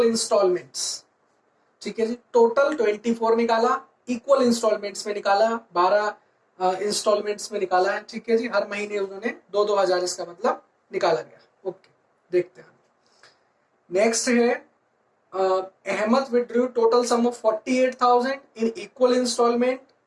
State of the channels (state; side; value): identical; both; correlation 1.00